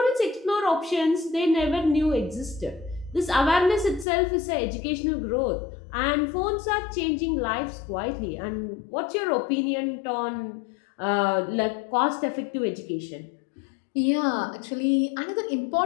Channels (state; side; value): drops out; right; at 4.0 s